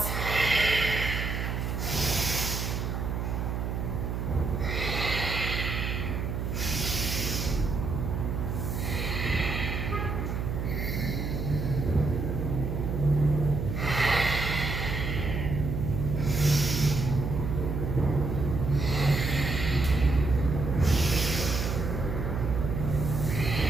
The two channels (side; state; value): right; noise; hum, 2 dB below the sound